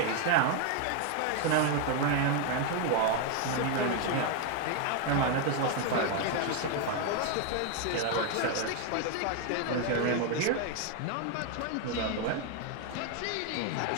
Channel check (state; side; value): different; both; correlation 0.01